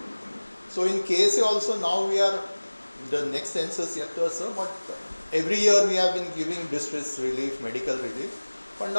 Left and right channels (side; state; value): both; inverted; correlation -1.00